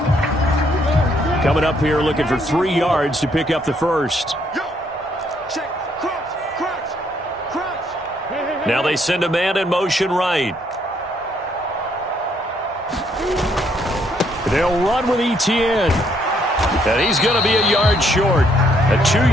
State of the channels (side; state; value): both; normal; correlation 0.70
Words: Coming up here looking for 3 yards to pick up the first. Now they send a man in motion right. They'll run with Etienne. And he's going to be a yard short. A